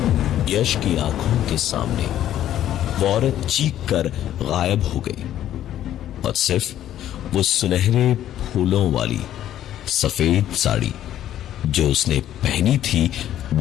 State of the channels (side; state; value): right; quieter; 11.9 dB